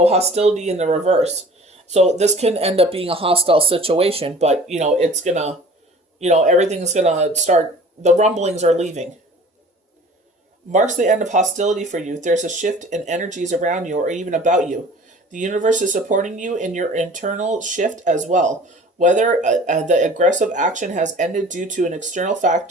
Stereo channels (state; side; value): normal; both; correlation 0.46